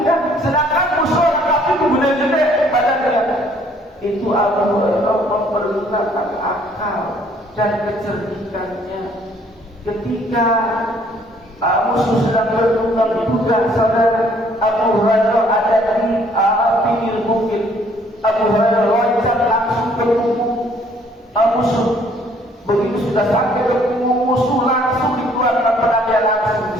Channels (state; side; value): normal; both; correlation 0.61